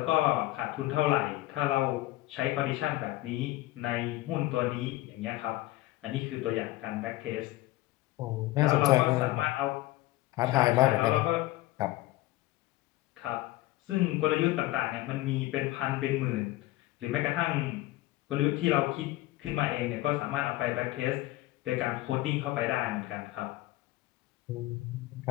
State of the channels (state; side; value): quieter; right; 18.0 dB